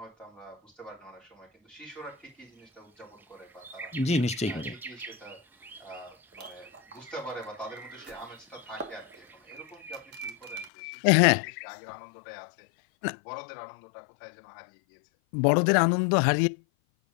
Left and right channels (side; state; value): right; drops out; at 10.7 s